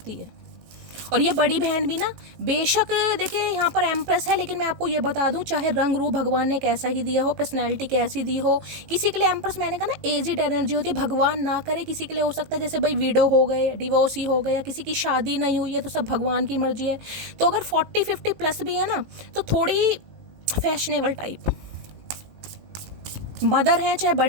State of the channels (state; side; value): late; left; 19 ms